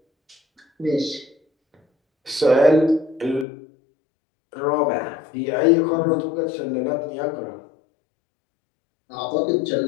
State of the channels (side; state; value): right; drops out; at 3.5 s